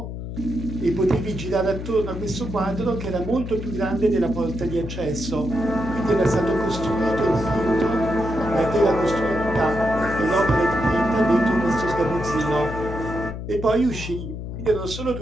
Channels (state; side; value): noise; left; hum, 7 dB below the sound